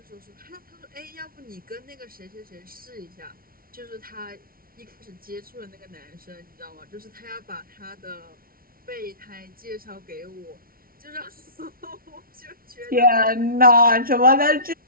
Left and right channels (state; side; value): late; left; 0.43 ms